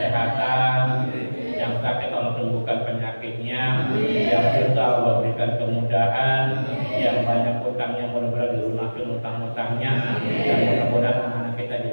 yang sakit Allah sembuhkan penyakitnya, yang susah Allah berikan kemudahan, yang banyak utangnya mudah-mudahan dilunasi utang-utangnya, dan mudah-mudahan anak-anak kita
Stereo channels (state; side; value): inverted; both; correlation -1.00